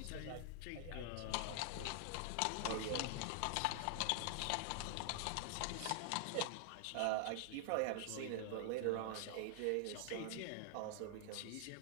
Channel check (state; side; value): different; both; correlation 0.00